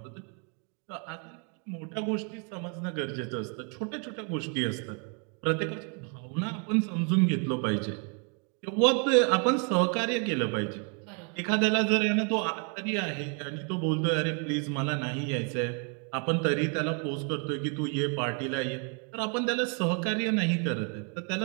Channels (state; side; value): quieter; left; 38.0 dB